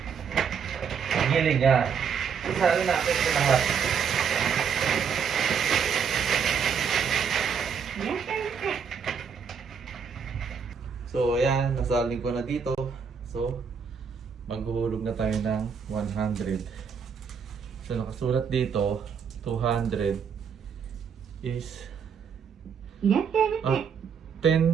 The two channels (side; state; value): left; quieter; 6.7 dB